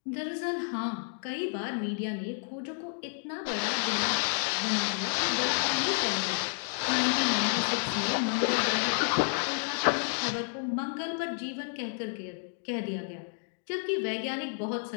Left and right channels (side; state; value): right; silent; digital silence